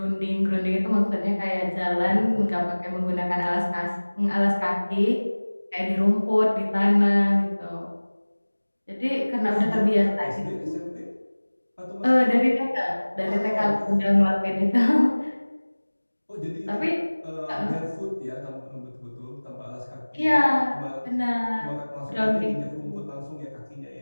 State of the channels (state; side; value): inverted; both; correlation -1.00